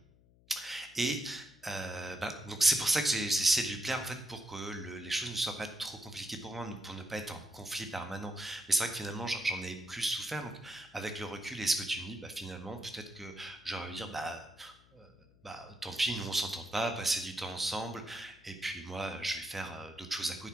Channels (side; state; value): left; noise; hum, 28 dB below the sound